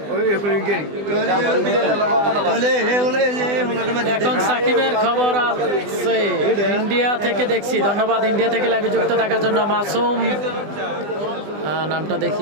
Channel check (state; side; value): late; left; 20 ms